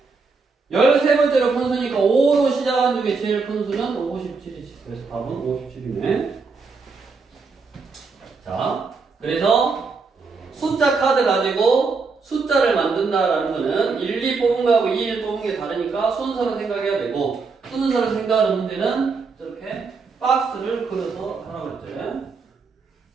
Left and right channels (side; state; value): left; quieter; 4.5 dB